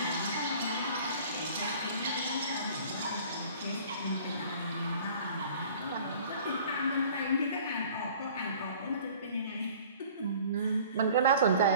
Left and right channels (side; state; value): both; inverted; correlation -0.49